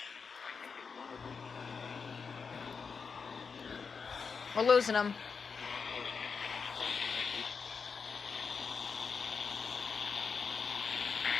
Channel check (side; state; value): right; quieter; 5.5 dB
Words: We're losing them.